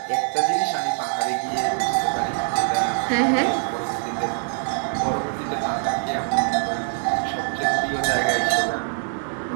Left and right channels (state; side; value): silent; left; 62 dB below the other